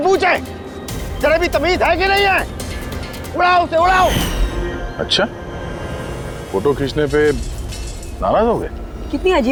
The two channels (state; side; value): identical; both; correlation 1.00